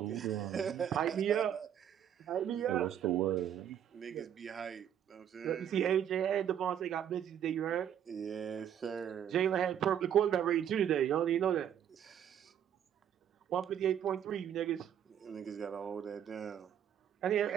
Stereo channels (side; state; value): left; quieter; 9.5 dB